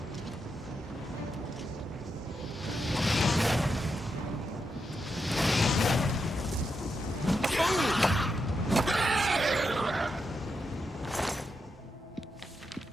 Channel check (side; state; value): both; normal; correlation 0.85